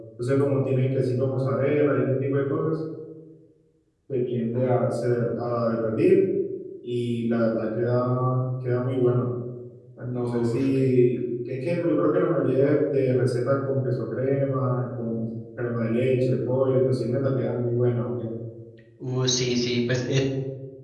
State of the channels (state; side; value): identical; both; correlation 1.00